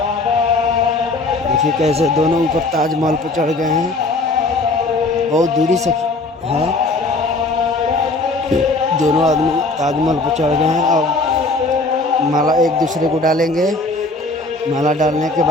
देखिए कैसे दोनों ऊपर ताजमहल पर चढ़ गए हैं, बहुत दूरी से है। दोनों आदमी ताजमहल पर चढ़ गए हैं। अब माला एक दूसरे को डालेंगे। माला डालने के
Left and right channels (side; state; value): right; quieter; 3.1 dB